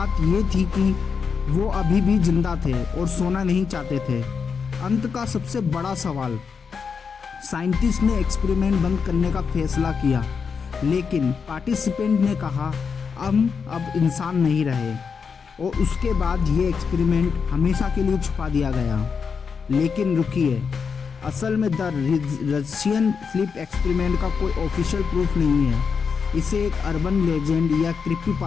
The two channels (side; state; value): right; quieter; 5.9 dB